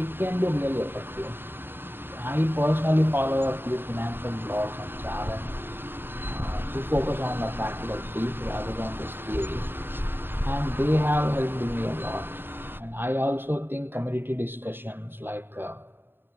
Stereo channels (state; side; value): late; left; 0.10 ms